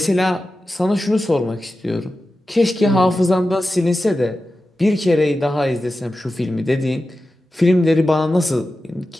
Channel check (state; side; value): normal; both; correlation 0.93